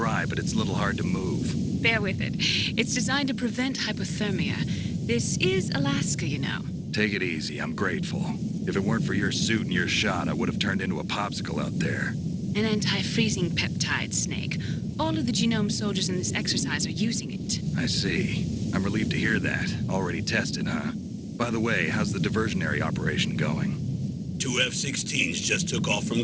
but it's a little hard to move. Bear with it. It's designed to prevent hypothermia. This is Alaska, you know. Take it easy, I'm grateful. If it weren't for your suit and your shot, I would have turned into a popsicle out there. An anti-freezing peptide, Snake. All of the genome soldiers in this exercise are using it. I see. I'm relieved to hear that. Already tested, huh? By the way, how's the diversionary operation going? 2 F-16s just took off from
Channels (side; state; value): both; identical; correlation 1.00